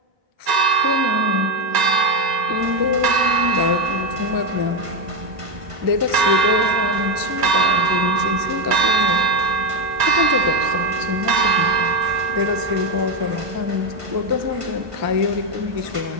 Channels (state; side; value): late; left; 1.9 ms